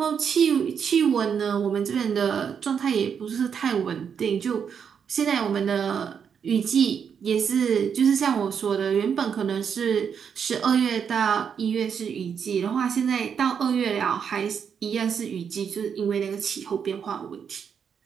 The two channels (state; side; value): quieter; left; 7.2 dB